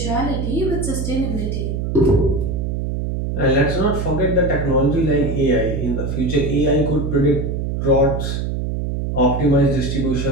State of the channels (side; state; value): right; noise; hum, 2 dB below the sound